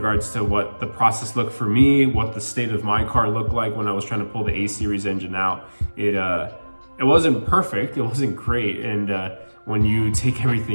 to what the process looked for me, what the state of my car looked like when I was trying to pull the A-Series engine out. It wasn't perfect, it wasn't great, and when you take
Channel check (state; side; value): inverted; both; correlation -1.00